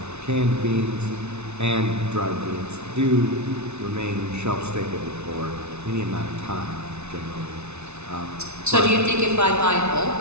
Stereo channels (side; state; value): left; late; 0.81 ms